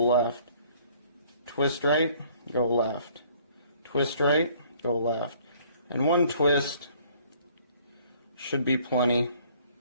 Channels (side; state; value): both; inverted; correlation -0.58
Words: Twist right, go left. Twist right, go left. And one twist should be plenty.